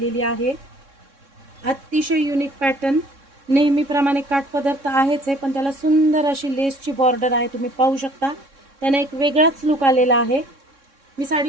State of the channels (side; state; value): left; late; 3.6 ms